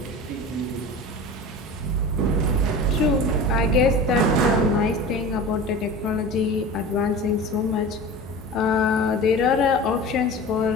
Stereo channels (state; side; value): normal; both; correlation 0.34